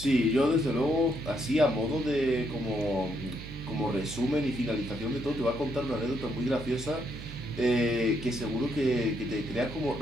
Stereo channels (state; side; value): noise; right; hum, 12 dB below the sound